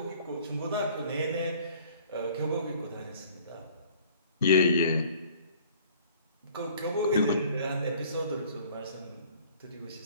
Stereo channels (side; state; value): both; inverted; correlation -0.53